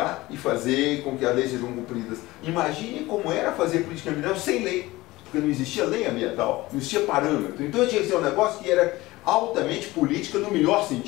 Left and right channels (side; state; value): right; quieter; 19.3 dB